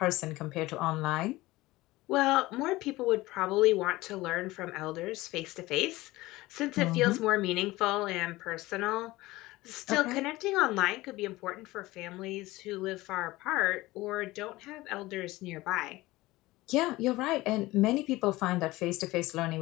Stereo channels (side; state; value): right; quieter; 19.1 dB